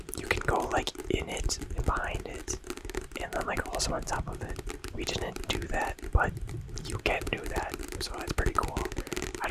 You can go like in it and behind it, and then like also on top of it. We didn't do that, but you can do that, so it's pretty cool. I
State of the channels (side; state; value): both; identical; correlation 1.00